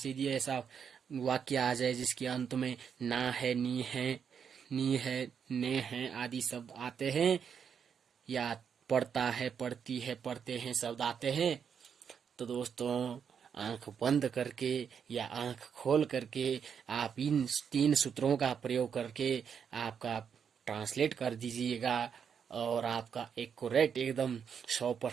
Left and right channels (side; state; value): left; quieter; 7.3 dB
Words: यदि ऐसा वाक्य आ जाए जिसके अंत में ना है, नी है, ने है आदि शब्द आते हैं, या पढ़ता है, पढ़ती है, पढ़ते हैं शब्द आते हैं, तो दोस्तों आंख बंद करके या आंख खोल करके आप इन 3 सूत्रों का प्रयोग करके आपका ट्रांसलेट कर दीजिएगा, और आपका एक्यूरेट एकदम